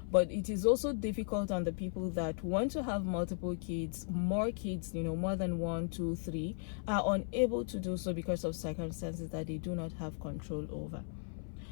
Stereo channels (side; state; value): right; silent; 54 dB below the other